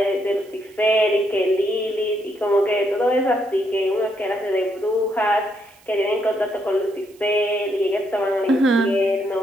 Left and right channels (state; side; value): noise; right; hiss, 29 dB below the sound